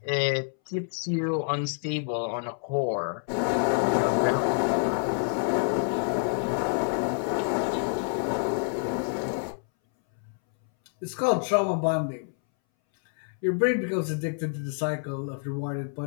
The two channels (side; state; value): right; silent; 60 dB below the other